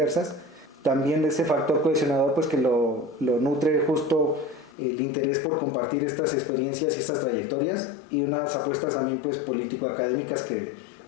También ese factor cohesionador pues que lo nutre justo el interés por compartir estas experiencias y estas trayectorias, y unas apuestas también pues político-académicas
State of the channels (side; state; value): right; drops out; at 4.8 s